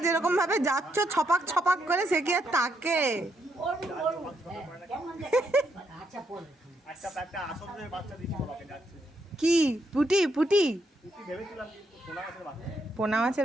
যেরকম ভাবে যাচ্ছ ছপাক ছপাক করে, সে কি আর তাকে কি পুটি পুটি পোনা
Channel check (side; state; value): both; normal; correlation 0.77